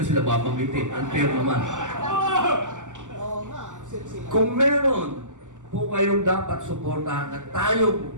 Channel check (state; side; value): late; left; 0.86 ms